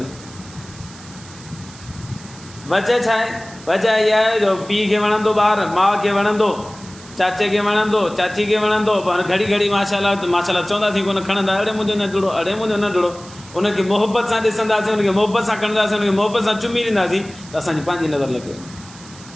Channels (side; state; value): right; noise; hiss, 19 dB below the sound